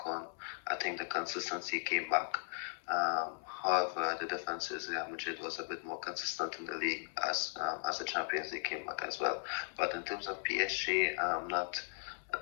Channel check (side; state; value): right; silent; 53 dB below the other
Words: on, I think the consistency came back. However, the difference is Real Madrid was a bit more consistent in the league as the Champions League came back as well. But in terms of PSG, I'm not